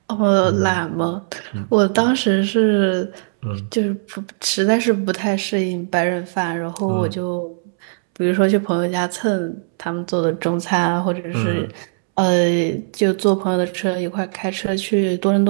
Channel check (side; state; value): left; silent; 66 dB below the other